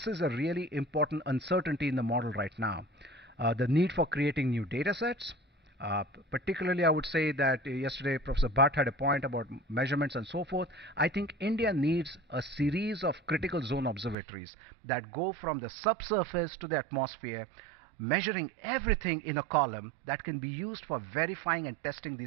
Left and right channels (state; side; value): drops out; left; at 14.2 s